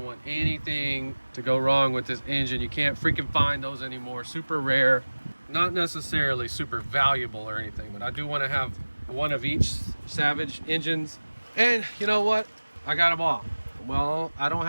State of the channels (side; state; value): both; inverted; correlation -1.00